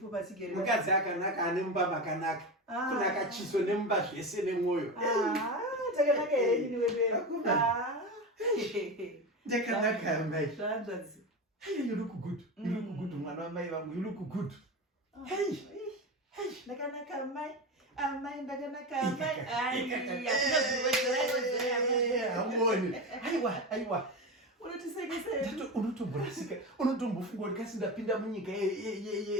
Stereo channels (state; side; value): normal; both; correlation 0.21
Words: patigere. Mukadzi akanaka ane mumba makanaka. Kunaka chiso nemumba zvese nemwoyo. Takanaka here ini wewe. Ndakanaka mai. Zvanzvadzi. Hey, you look good. You look good, mwana wamai vangu. You look good. Hey. Ndakanaka mai. Amai ndakanaka mai. Amoni. Aiwa. Unotisekesei. Unotomborasika. Unotombofunga kuti kasi ndapinda munyika